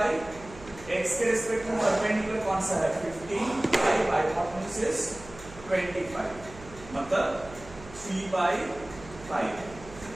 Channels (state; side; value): noise; right; hum, 18 dB below the sound